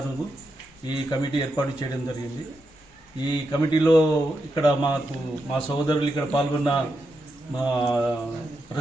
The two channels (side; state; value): both; normal; correlation 0.85